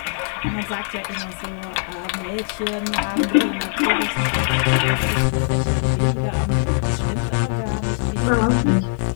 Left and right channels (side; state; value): right; silent; digital silence